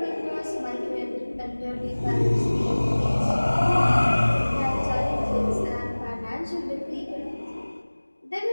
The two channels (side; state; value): both; inverted; correlation -1.00